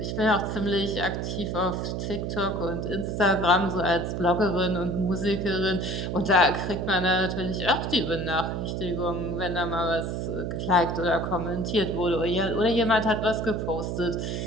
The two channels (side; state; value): right; noise; hum, 3 dB below the sound